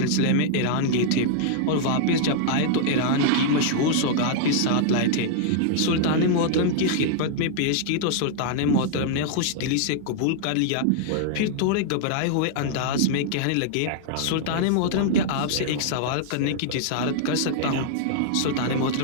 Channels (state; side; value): different; both; correlation -0.01